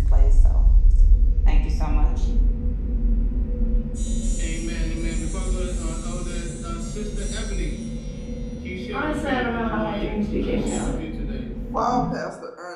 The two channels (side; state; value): both; identical; correlation 1.00